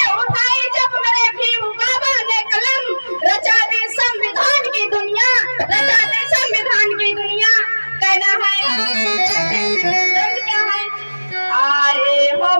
उठाई जब मेरे भीम बाबा ने कलम, रचा दे संविधान की दुनिया, रचा दे संविधान की दुनिया। कहना है क्या है, आए हो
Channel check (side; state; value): both; inverted; correlation -1.00